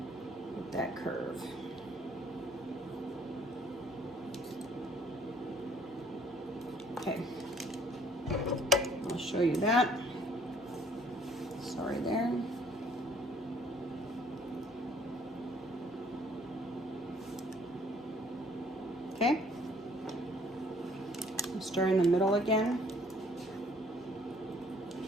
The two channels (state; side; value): normal; both; correlation 0.60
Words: with that curve. Okay. I'll show you that. Sorry there. Okay. I'll start in the middle again.